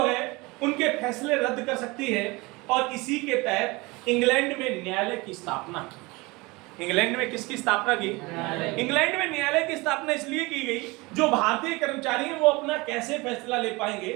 है उनके फैसले रद्द कर सकती है, और इसी के तहत इंग्लैंड में न्यायालय की स्थापना की। इंग्लैंड में किसकी स्थापना की? इंग्लैंड में न्यायालय की स्थापना इसलिए की गई, जो भारतीय कर्मचारी हैं वो अपना कैसे फैसला ले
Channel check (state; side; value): quieter; left; 24.1 dB